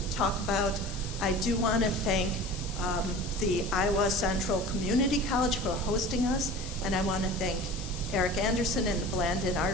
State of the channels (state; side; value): noise; left; hiss, 12 dB below the sound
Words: talk about. I do want to thank the Iowa Central Community College for hosting us, and I want to thank Eric Anderson and the Blandin